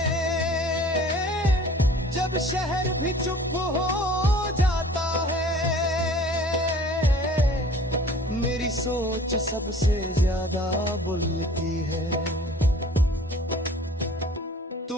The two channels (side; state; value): both; normal; correlation 0.48